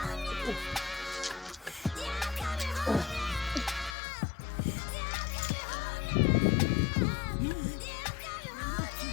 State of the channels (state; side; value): drops out; right; at 4.0 s